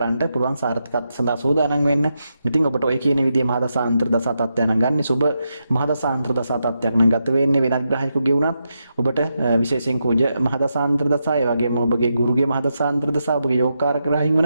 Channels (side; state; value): both; inverted; correlation -0.85